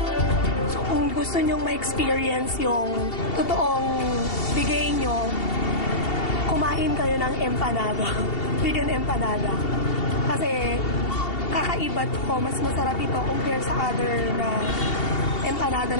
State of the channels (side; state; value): right; late; 2.7 ms